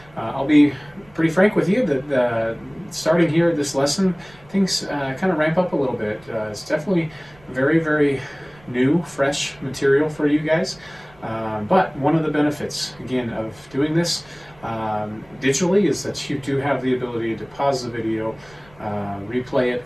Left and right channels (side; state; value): right; noise; rumble, 27 dB below the sound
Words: I'll be pretty frank with you that starting here at this lesson, things kind of ramp up a little bit. It's definitely very, very new, fresh material for you guys. But one of the benefits, again, of doing this digitally is that you do have the ability to pause the video, replay it,